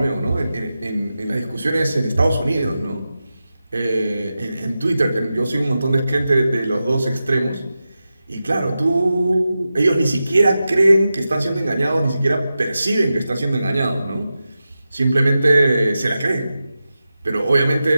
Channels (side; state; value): both; inverted; correlation -0.92